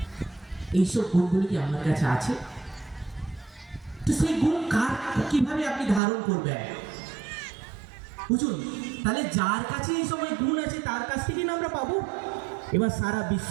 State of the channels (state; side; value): drops out; left; at 6.0 s